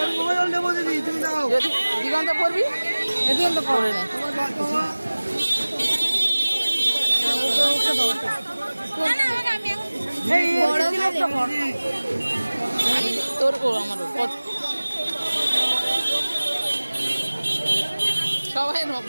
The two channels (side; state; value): both; inverted; correlation -1.00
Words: দিগন্ত পড়বি, দিগন্ত পড়ে না তোর আমার সবাই